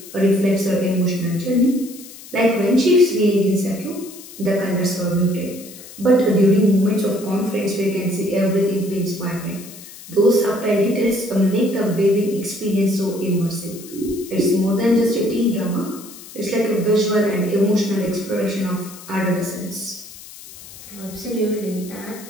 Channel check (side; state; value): left; noise; hiss, 17 dB below the sound